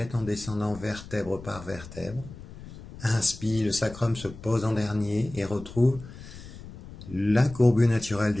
en descendant vertèbre par vertèbre. Inspire, le sacrum se pose en dernier et retrouve la courbure naturelle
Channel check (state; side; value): noise; left; rumble, 15 dB below the sound